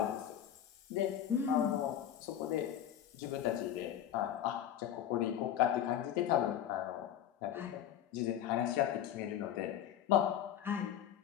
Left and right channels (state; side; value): quieter; right; 10.4 dB